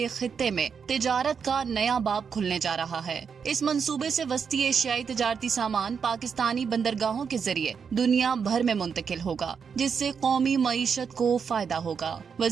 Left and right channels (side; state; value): left; quieter; 6.4 dB